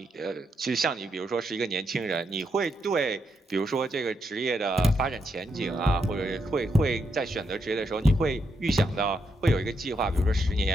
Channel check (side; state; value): both; normal; correlation 0.80